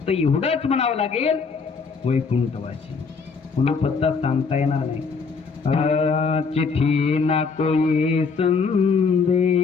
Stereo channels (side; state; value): right; quieter; 5.0 dB